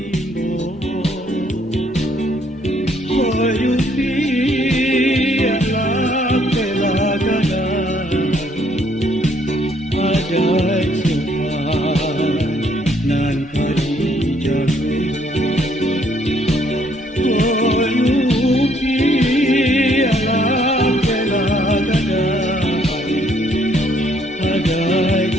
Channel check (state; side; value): normal; both; correlation 0.67